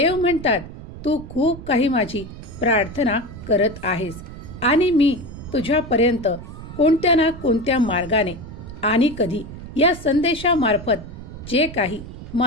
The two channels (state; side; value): noise; right; rumble, 13 dB below the sound